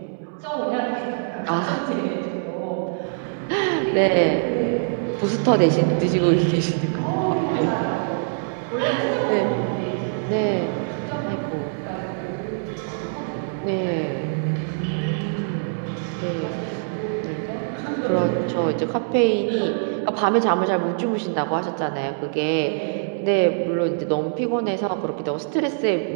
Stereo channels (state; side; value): silent; left; 63 dB below the other